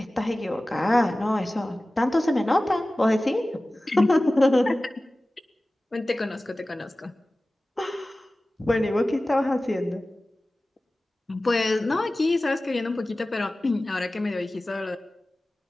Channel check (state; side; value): normal; both; correlation 0.97